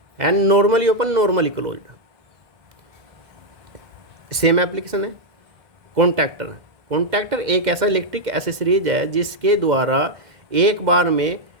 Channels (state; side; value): late; left; 2.1 ms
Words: and normally open, normally closed. Same application है। कॉन्टैक्टर, कॉन्टैक्टर एक ऐसा इलेक्ट्रिक एसेसरीज है जिसके द्वारा एक बार में